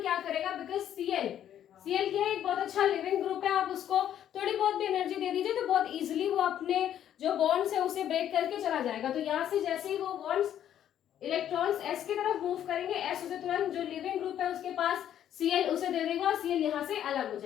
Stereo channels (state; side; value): quieter; right; 10.6 dB